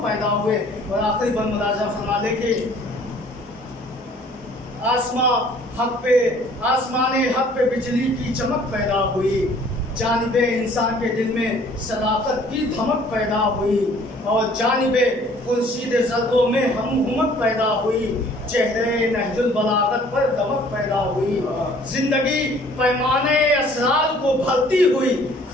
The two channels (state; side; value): normal; both; correlation 0.55